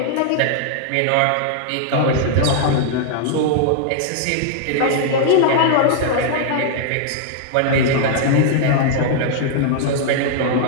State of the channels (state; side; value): different; both; correlation -0.01